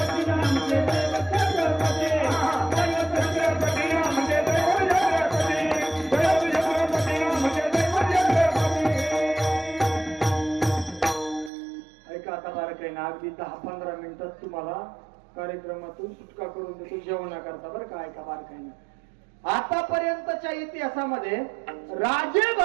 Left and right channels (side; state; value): left; drops out; at 11.5 s